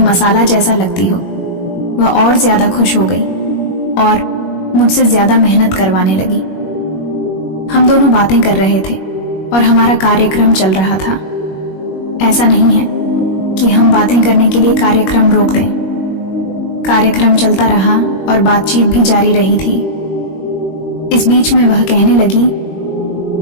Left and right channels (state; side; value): late; right; 21 ms